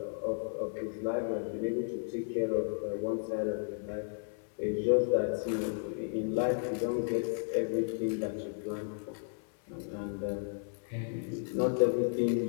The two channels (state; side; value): silent; right; 55 dB below the other